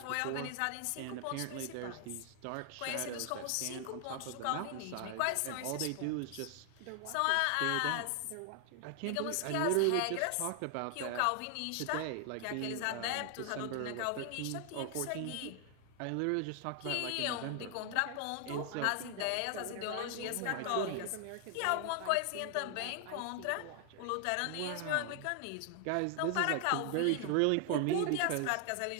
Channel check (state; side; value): different; both; correlation 0.00